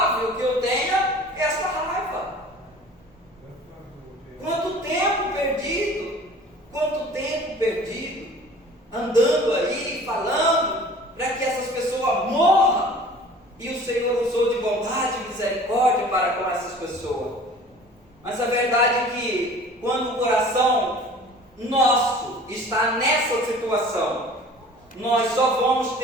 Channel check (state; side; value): normal; both; correlation 0.45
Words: que eu tenha esta raiva. Quanto tempo perdido, andando aí, falando para que essas pessoas morram, e o Senhor usou de bondade e misericórdia para com essas pessoas. Mas a verdade é que quando o coração nosso está nessa situação, nós só vamos